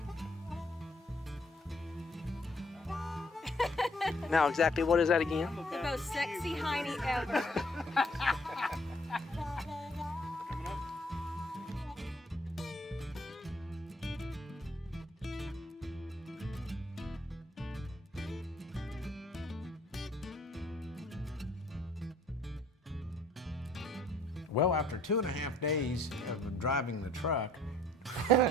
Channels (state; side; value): normal; both; correlation 0.61